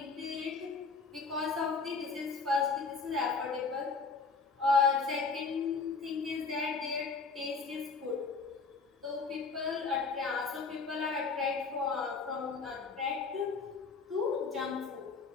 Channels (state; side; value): quieter; right; 4.6 dB